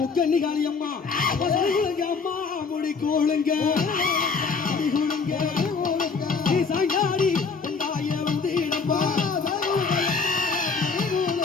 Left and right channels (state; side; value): quieter; right; 4.9 dB